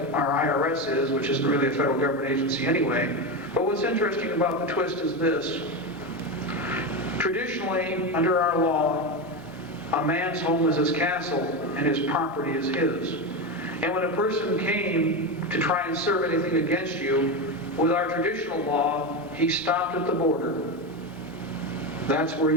our IRS is, which isn't really a federal government agency anyway. But what's interesting about the twist is this. Traditionally, under our law, a man's home is his castle and his property is his. And when a person came to try and serve anything against you, with our traditional law, he stopped at the border. That's where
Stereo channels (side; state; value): both; normal; correlation 0.16